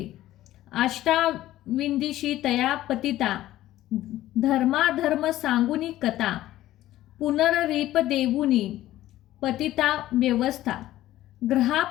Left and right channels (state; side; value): quieter; right; 14.6 dB